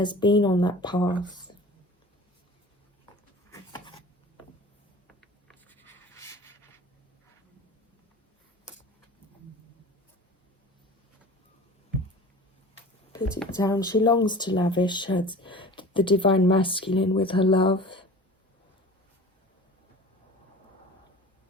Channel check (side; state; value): both; normal; correlation 0.39